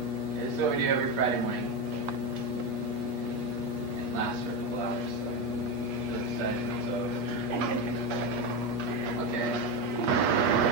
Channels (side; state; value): left; late; 8.4 ms